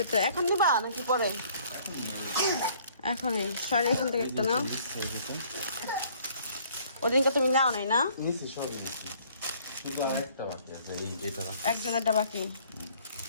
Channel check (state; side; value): inverted; both; correlation -0.59